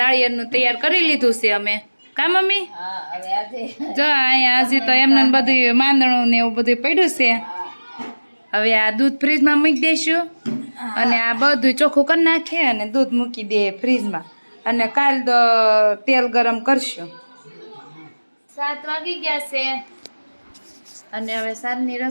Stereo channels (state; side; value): inverted; both; correlation -1.00